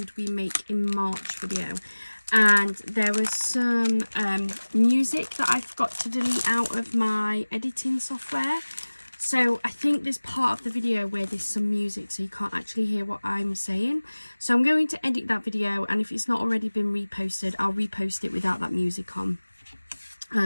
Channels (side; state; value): both; inverted; correlation -1.00